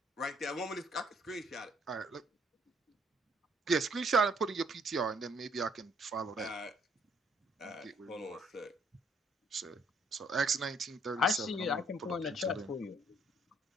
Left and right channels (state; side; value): normal; both; correlation 0.66